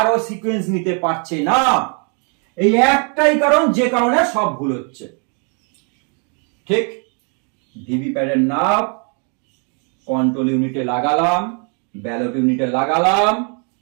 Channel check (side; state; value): left; quieter; 38.7 dB